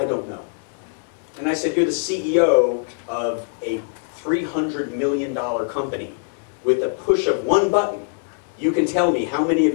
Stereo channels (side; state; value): right; silent; digital silence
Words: don't know. And I said, you're the CEO of a $300 million company. With a push of one button, you can tell me how many of